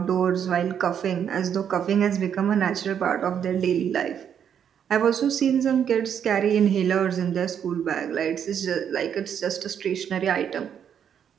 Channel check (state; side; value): quieter; left; 8.5 dB